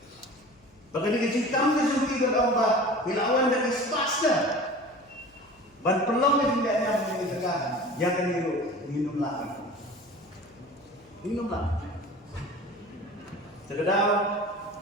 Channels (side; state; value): left; noise; hum, 29 dB below the sound